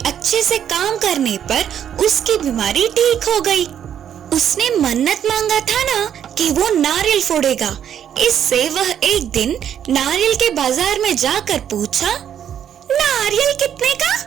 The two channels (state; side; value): quieter; left; 9.4 dB